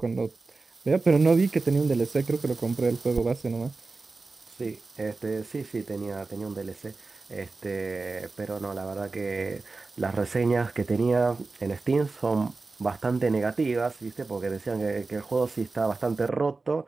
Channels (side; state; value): left; quieter; 3.8 dB